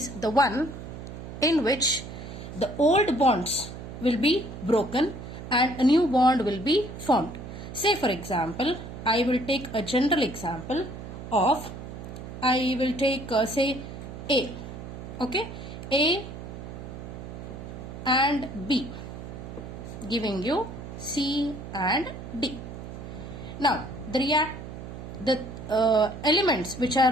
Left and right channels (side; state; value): right; noise; hum, 10 dB below the sound